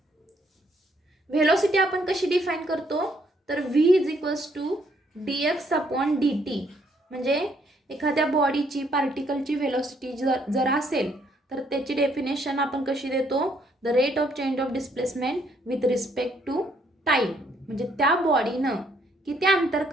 व्हेलॉसिटी आपण कशी डिफाईन करतो, तर v is equals to dx upon dt. म्हणजे एखाद्या बॉडीची पार्टिकलची व्हेलॉसिटी जर असेल तर त्याची डेफिनेशन आपण कशी देतो, the rate of change of displacement with respect to time. म्हणजे त्या बॉडीनं किती अंतर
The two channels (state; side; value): normal; both; correlation 0.69